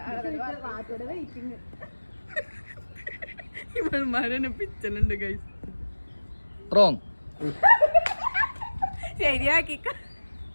ഇവന്മാരെന്നെ പിച്ചലുണ്ട് ഗൈസ്. റോങ്. ശരിയാക്കി.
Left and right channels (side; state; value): both; inverted; correlation -1.00